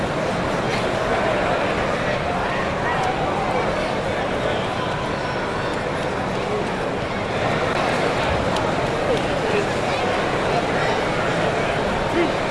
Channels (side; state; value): both; identical; correlation 1.00